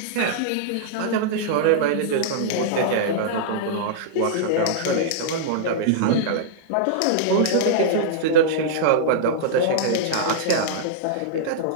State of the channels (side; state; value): both; different; correlation -0.02